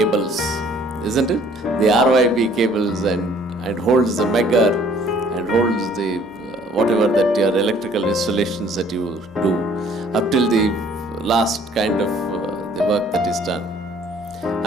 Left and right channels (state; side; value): normal; both; correlation 0.57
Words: isn't it? The RYB cables and holds the megger and holds the whatever that your electrical installations that you do up till the last kind of the work that is done.